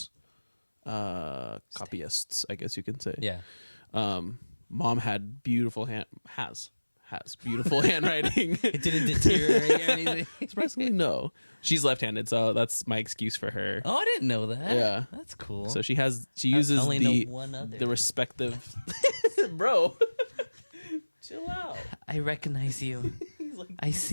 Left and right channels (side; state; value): both; inverted; correlation -1.00